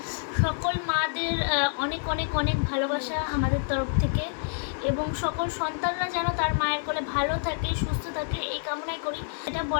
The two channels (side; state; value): right; silent; digital silence